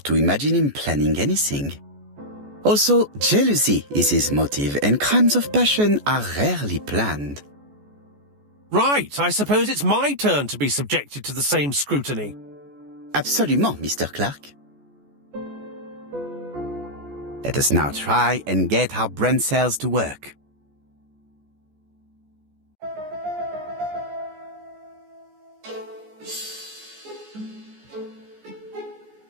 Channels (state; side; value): late; left; 14 ms